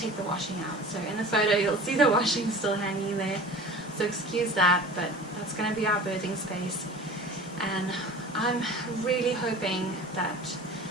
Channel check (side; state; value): both; normal; correlation 0.39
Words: the washing out. So in the photo you'll see the washing still hanging there, so excuse that, but that's going to be our birthing space. And I'm really hoping that